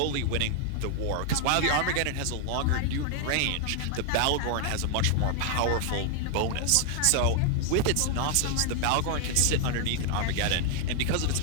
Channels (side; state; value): both; different; correlation 0.00